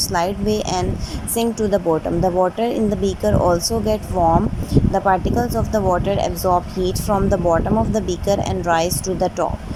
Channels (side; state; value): both; identical; correlation 1.00